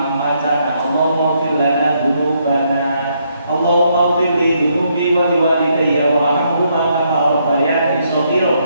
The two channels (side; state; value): both; inverted; correlation -0.74